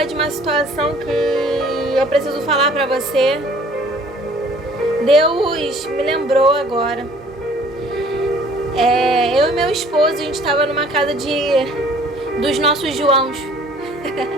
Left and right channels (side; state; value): left; noise; hum, 28 dB below the sound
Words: de uma situação que eu preciso falar pra você. Deus me lembrou agora. Eu e meu esposo, a gente estava numa casa dos nossos Joãos,